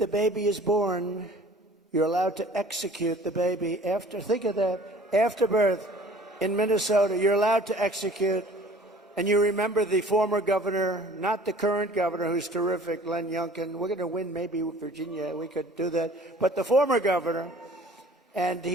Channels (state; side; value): normal; both; correlation 0.49